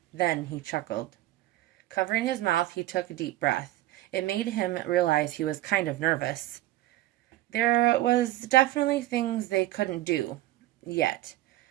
Then he chuckled. Covering his mouth, he took a deep breath. It made him realize he was kind of nervous. There was definitely things they couldn't do. Yet.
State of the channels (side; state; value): left; quieter; 15.8 dB